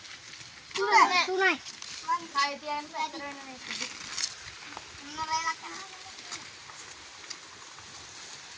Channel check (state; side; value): identical; both; correlation 1.00